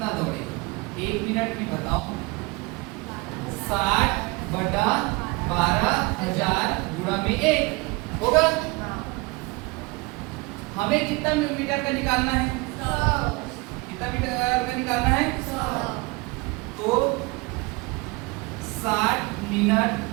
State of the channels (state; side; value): quieter; left; 25.6 dB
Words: दौड़ेगा, 1 मिनट में बताओ 60 बटा 12000 गुणा में 1 होगा। हमें कितना मीटर का निकालना है 100। कितना मीटर का निकालना है 100। तो 60 मिनट